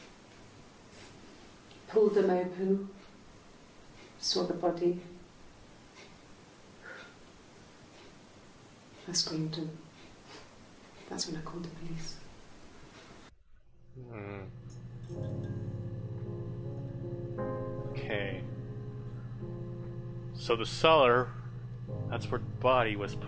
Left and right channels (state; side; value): identical; both; correlation 1.00